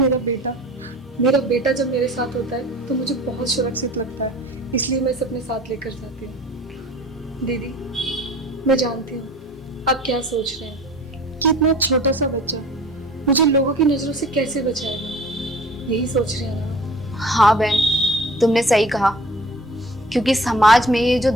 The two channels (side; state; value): both; normal; correlation 0.45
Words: बेटा जब मेरे साथ होता है तो मुझे बहुत सुरक्षित लगता है, इसलिए मैं इसे अपने साथ लेकर जाती हूँ। दीदी मैं जानती हूँ आप क्या सोच रहे हैं कि इतना छोटा सा बच्चा मुझे लोगों की नजरों से कैसे बचाएगा, यही सोच रहे हैं ना? हाँ बहन, तुमने सही कहा, क्योंकि समाज में ये जो